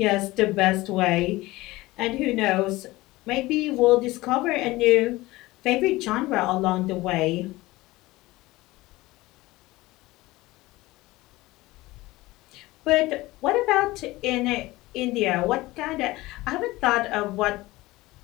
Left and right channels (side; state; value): right; quieter; 19.5 dB